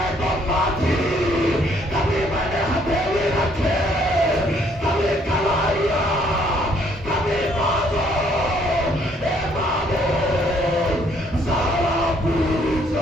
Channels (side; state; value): both; normal; correlation 0.65